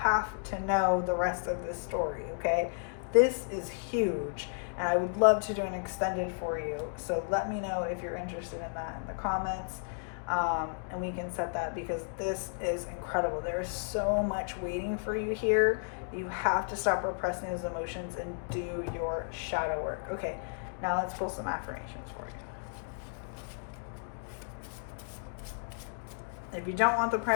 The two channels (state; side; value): silent; right; digital silence